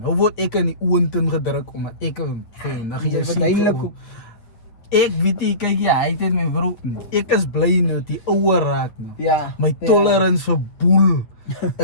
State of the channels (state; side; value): late; right; 8.8 ms